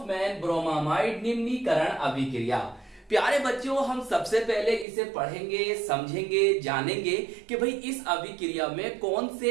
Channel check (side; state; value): left; drops out; at 4.9 s